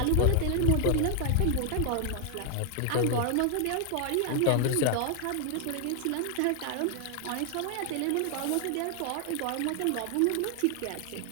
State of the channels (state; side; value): different; both; correlation 0.00